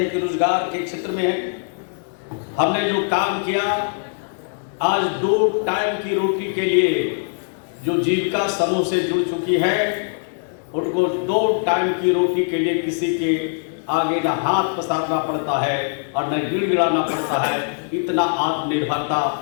कि रोजगार के क्षेत्र में हमने जो काम किया, आज 2 टाइम की रोटी के लिए जो जीविका समूह से जुड़ चुकी है, उनको 2 टाइम की रोटी के लिए किसी के आगे न हाथ पसारना पड़ता है और न गिड़गिड़ाना पड़ता है। इतना आत्मनिर्भरता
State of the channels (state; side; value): silent; right; digital silence